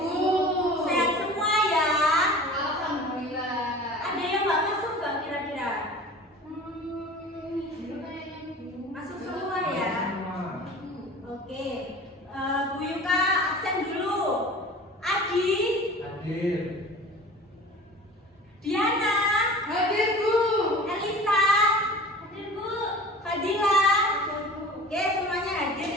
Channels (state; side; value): normal; both; correlation 0.40